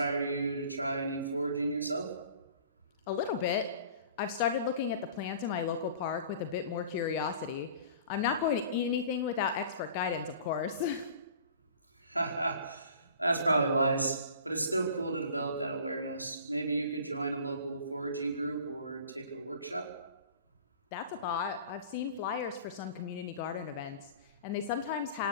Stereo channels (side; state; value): both; inverted; correlation -0.45